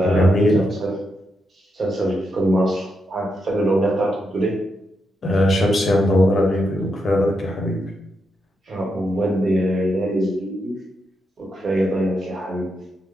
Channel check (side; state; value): both; normal; correlation 0.83